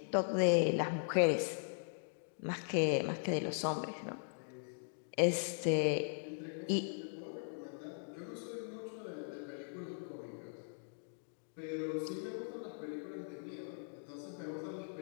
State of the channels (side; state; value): right; silent; digital silence